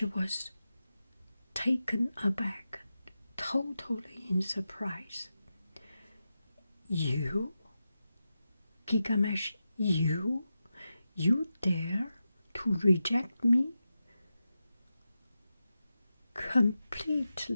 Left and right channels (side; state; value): both; inverted; correlation -0.91